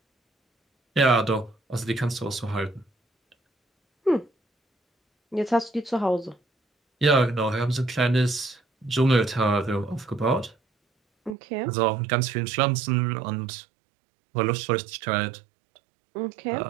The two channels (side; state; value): left; drops out; at 11.4 s